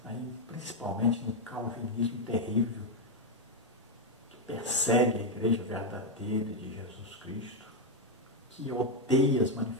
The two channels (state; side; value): normal; both; correlation 0.03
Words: aí, principalmente no calvinismo terrível, que persegue a igreja verdadeira de Jesus Cristo, que odeia as